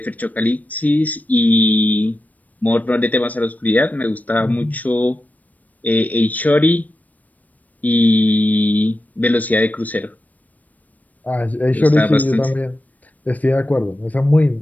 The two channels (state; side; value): late; right; 0.076 ms